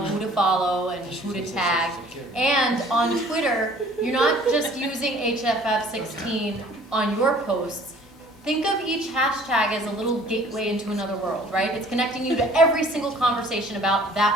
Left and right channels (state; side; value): normal; both; correlation 0.53